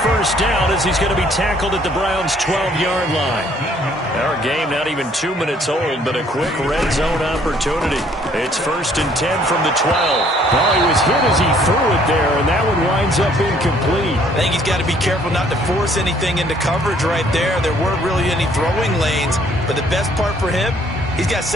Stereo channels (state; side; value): normal; both; correlation 0.62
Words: 1st down as he's going to be tackled at the Browns' 12-yard line. Our game not even 2 minutes old, but a quick red zone opportunity. It's 1st and 10 from the 12. Well, he was hit as he threw it there, and that one winds up incomplete. I think he's got to be careful not to force anything into coverage right there. There weren't really any throwing lanes, but the best part for him, he's got